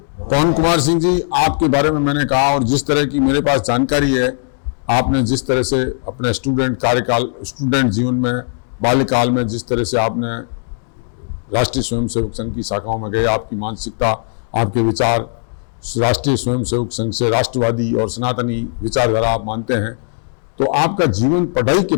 पवन कुमार सिंह जी, आपके बारे में मैंने कहा और जिस तरह की मेरे पास जानकारी है, आपने जिस तरह से अपने स्टूडेंट जीवन में, बाल्यकाल में जिस तरह से आपने राष्ट्रीय स्वयंसेवक संघ की शाखाओं में गए, आपकी मानसिकता, आपके विचार राष्ट्रीय स्वयंसेवक संघ से राष्ट्रवादी और सनातनी विचारधारा आप मानते हैं। तो आपका जीवन पढ़ाई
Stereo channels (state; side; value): silent; right; digital silence